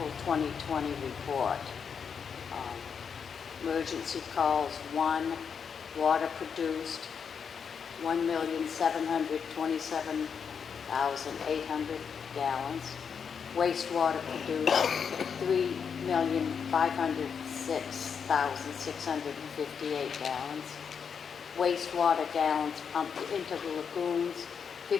2020 report. Emergency calls 1, water produced 1,727,800 gallons. Wastewater produced 3,506,658 gallons. Wastewater gallons pumped into the lagoons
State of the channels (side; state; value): right; quieter; 6.7 dB